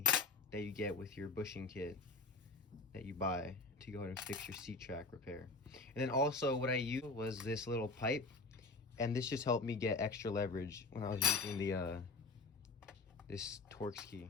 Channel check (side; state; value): right; quieter; 3.6 dB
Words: that you get with your bushing kit that you buy to go ahead and fix your seat track repair. And then also what I used was this little pipe, and this just helped me get extra leverage when I was using the this Torx